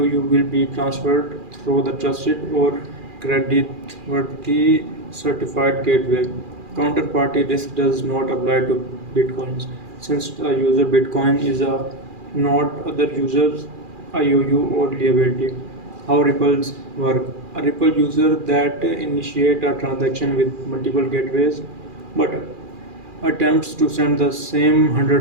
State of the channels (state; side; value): late; left; 2.4 ms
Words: will be transferred through the trusted or creditworthy certified gateway. Counterparty risk does not apply to bitcoins, since a user bitcoin is a not other users IOU or liability. How ripples work. A ripple user that initiate a transaction with multiple gateways but attempts to send the same